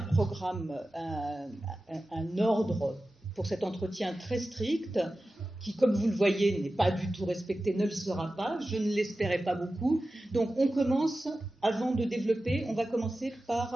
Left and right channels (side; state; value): both; normal; correlation 0.94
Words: programme, un ordre pour cet entretien très strict, qui, comme vous le voyez, n'est pas du tout respecté, ne le sera pas, je ne l'espérais pas beaucoup. Donc on commence, avant de développer, on va commencer